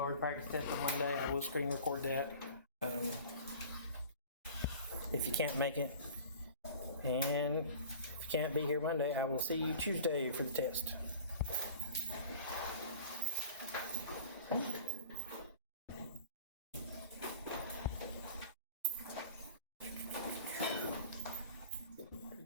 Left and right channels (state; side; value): inverted; both; correlation -0.43